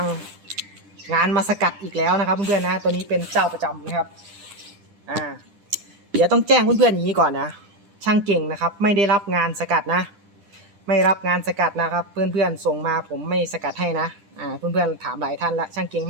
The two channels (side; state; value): left; late; 10 ms